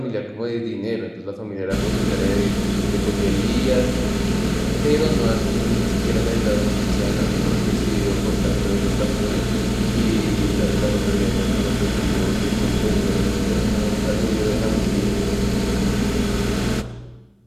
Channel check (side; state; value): both; identical; correlation 1.00